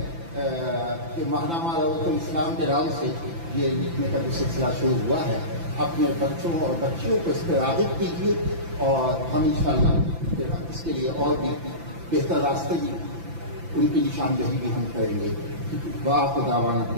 کہ ماہنامہ روضۃ الاسلام کے نام سے یہ لکھنے کا جو سلسلہ شروع ہوا ہے. اپنے بچوں اور بچیوں کو اس پہ راغب کیجیے، اور ہم انشاءاللہ اس کے لیے اور بھی بہتر راستے بھی، ان کی نشاندہی بھی ہم کریں گے. وآخر دعوانا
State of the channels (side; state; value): left; late; 5.9 ms